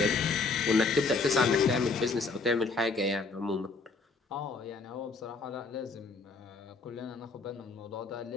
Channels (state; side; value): quieter; right; 4.1 dB